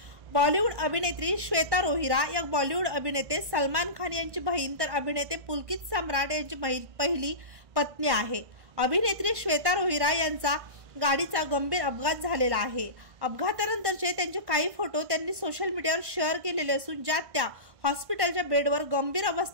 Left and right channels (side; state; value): left; late; 1.5 ms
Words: बॉलिवूड अभिनेत्री श्वेता रोहिरा या बॉलिवूड अभिनेते सलमान खान यांची बहीण तर अभिनेते पुलकित सम्राट यांची पहिली पत्नी आहे। अभिनेत्री श्वेता रोहिरा यांचा गाडीचा गंभीर अपघात झालेला आहे। अपघातानंतरचे त्यांचे काही फोटो त्यांनी सोशल मीडियावर शेअर केलेले असून ज्यात त्या हॉस्पिटलच्या बेडवर गंभीर